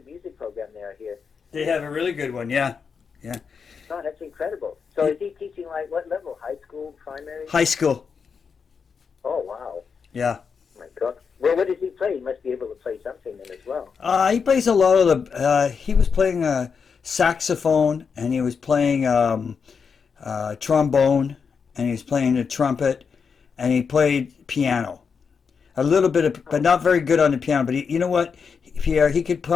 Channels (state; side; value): quieter; right; 5.9 dB